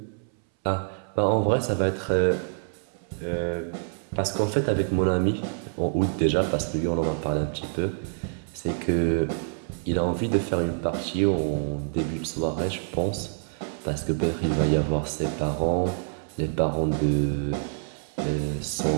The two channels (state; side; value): silent; left; 60 dB below the other